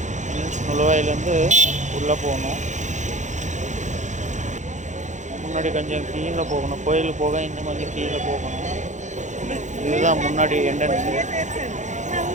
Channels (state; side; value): late; left; 0.35 ms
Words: நுழைவாயிலேருந்து உள்ளே போகணும். முன்னாடி கொஞ்சம் கீழே போகணும், கோயிலுக்கு போக இன்னும் கொஞ்சம் கீழே போகணும். இதுதான் முன்னாடி என்ட்ரன்ஸு.